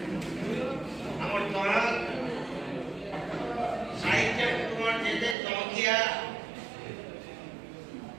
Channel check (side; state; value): left; drops out; at 5.4 s